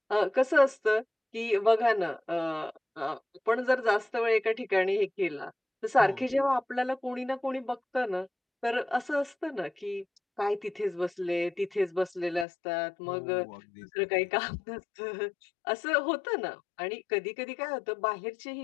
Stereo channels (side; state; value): right; drops out; at 12.5 s